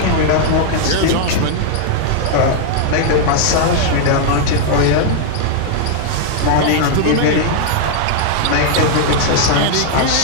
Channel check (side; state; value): both; different; correlation -0.01